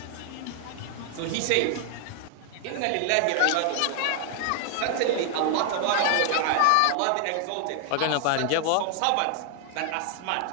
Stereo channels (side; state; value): both; different; correlation 0.00